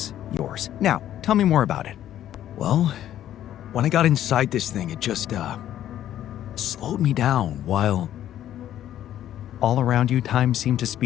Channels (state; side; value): quieter; right; 11.8 dB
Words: yours. Now, tell me more about it. Well, when I got inside this thing, it just, slowed me down while... All around you, time seemed to